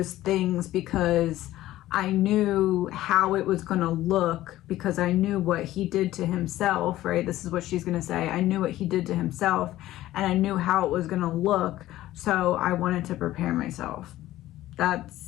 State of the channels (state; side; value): quieter; right; 15.0 dB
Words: things because I knew how it was going to look, because I knew what he did to himself, right? This is what she's going to say. I knew what he did to himself, and I knew how it was going to look. So I wanted to prepare myself.